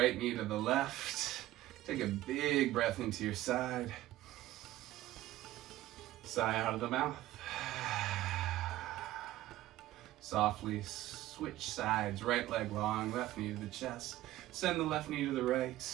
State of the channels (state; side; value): quieter; left; 15.5 dB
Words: knee to the left. Take a big breath into your side. Sigh out of the mouth. Softly switch sides. Right leg long, left knee to the chest. Send the left knee to the right.